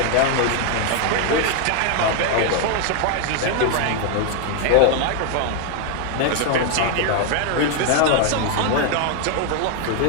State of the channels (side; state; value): both; different; correlation 0.01